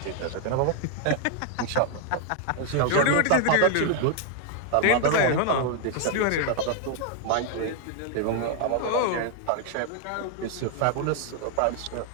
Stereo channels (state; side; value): different; both; correlation 0.00